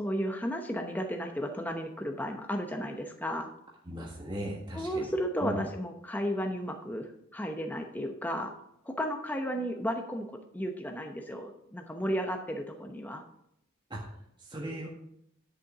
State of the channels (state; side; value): normal; both; correlation 0.73